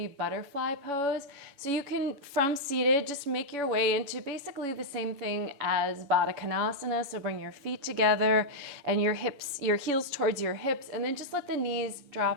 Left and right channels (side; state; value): left; late; 7.1 ms